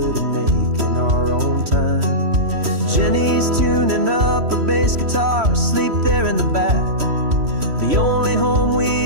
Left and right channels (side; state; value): left; late; 3.1 ms